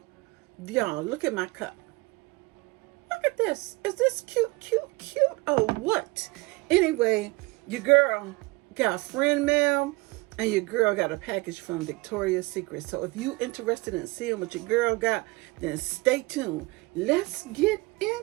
Y'all, look at my cup. Look at this. Is this cute, cute, cute or what? Anyway, your girl got friend mail and your girl got a package from Victoria's Secret. So if you interested in seeing what your girl got, then stay tuned. Let's get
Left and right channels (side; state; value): left; quieter; 23.6 dB